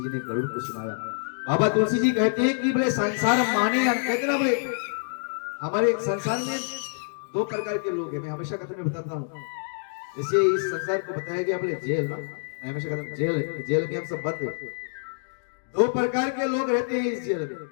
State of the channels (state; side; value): silent; right; digital silence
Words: ने गरुड़ को सुनाया। बाबा तुलसी जी कहते हैं कि बोले संसार माने, कहते ना बोले हमारे संसार में 2 प्रकार के लोग हैं। मैं हमेशा कथा में बताता हूँ, जैसे इस संसार को बताया गया बोले जेल ना, मैं हमेशा कहता हूँ जेल में हम सब बंद हैं। 2 प्रकार के लोग रहते हैं इस जेल